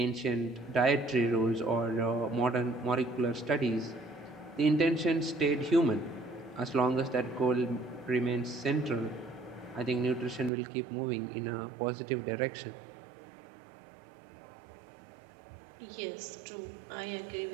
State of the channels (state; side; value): drops out; left; at 10.5 s